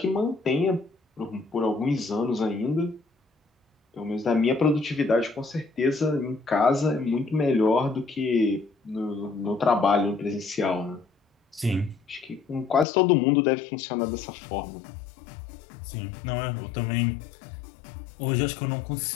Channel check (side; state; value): right; drops out; at 12.9 s